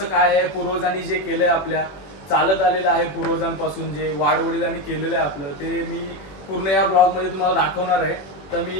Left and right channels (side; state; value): right; late; 21 ms